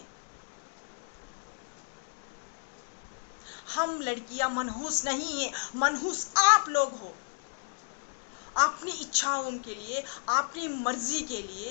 हम लड़कियां मनहूस नहीं हैं, मनहूस आप लोग हो। अपनी इच्छाओं के लिए, अपनी मर्जी के लिए,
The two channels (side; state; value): right; silent; digital silence